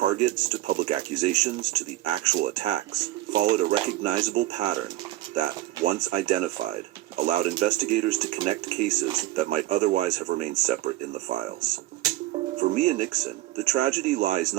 to public accusations to the actual attacks, followed a recognizable pattern that, once identified, allowed investigators to connect cases that might otherwise have remained separate in the files. For Mia Nixon, the tragedy lies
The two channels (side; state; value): left; quieter; 16.1 dB